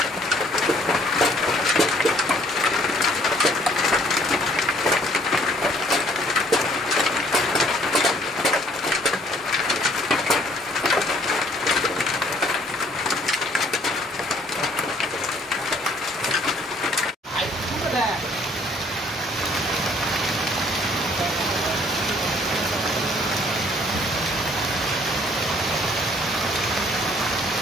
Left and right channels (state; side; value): normal; both; correlation 0.60